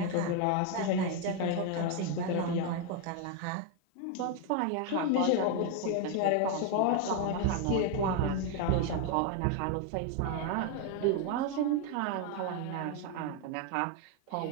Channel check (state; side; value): different; both; correlation 0.01